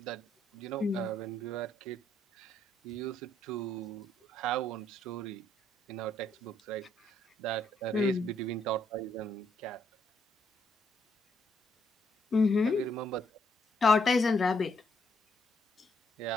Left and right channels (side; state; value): both; normal; correlation 0.73